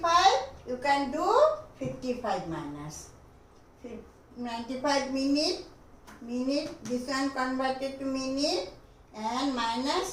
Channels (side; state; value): both; identical; correlation 1.00